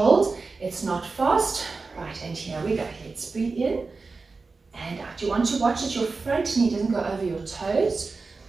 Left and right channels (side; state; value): left; quieter; 4.1 dB